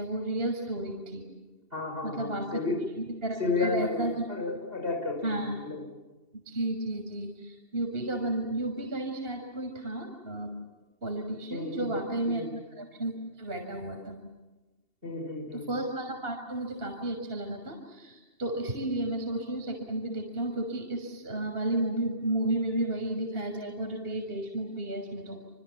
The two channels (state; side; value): late; left; 2.8 ms